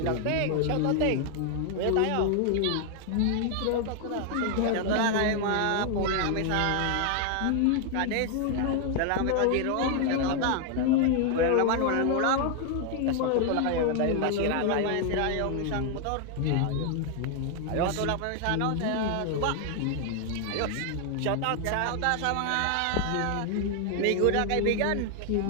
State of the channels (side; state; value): both; different; correlation 0.00